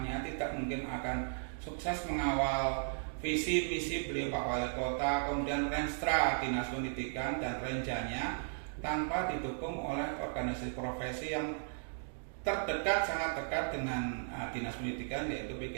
tidak mungkin akan sukses mengawal visi misi beliau Pak Wali Kota, kemudian Renstra Dinas Pendidikan dan renjanya tanpa didukung oleh organisasi profesi yang terdekat, sangat dekat dengan Dinas Pendidikan, yaitu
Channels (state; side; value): silent; left; digital silence